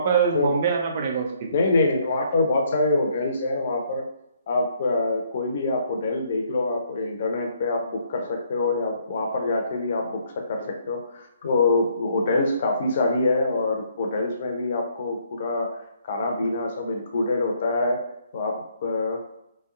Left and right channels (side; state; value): both; inverted; correlation -0.67